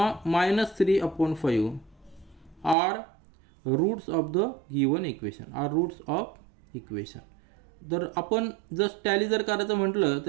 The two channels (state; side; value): drops out; left; at 2.8 s